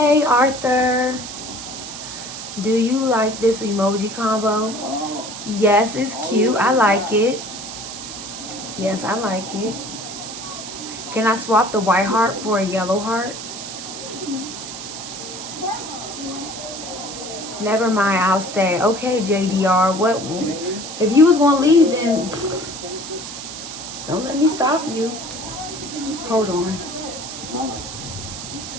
Arthur. Do you like this emoji combo? Yes, it's cute. I like it. Yes, I like it. Can I swap the white heart for a yellow heart? Never mind, I'll stay. Okay, JDR. What? If you was gonna leave, then don't let me stop you. Hold on.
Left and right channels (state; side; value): noise; right; hiss, 10 dB below the sound